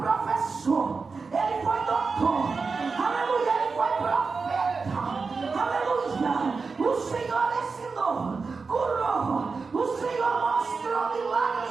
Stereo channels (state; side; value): quieter; left; 4.6 dB